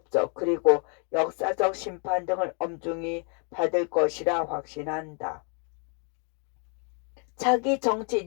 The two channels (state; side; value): quieter; right; 39.9 dB